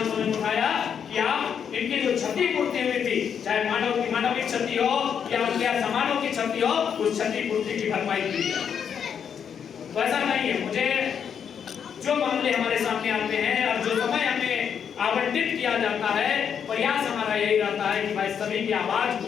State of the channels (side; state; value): right; quieter; 7.7 dB